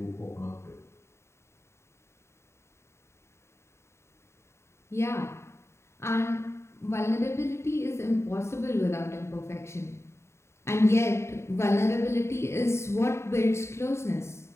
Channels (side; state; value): right; late; 0.13 ms